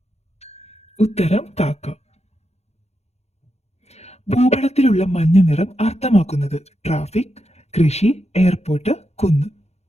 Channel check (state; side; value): late; right; 0.31 ms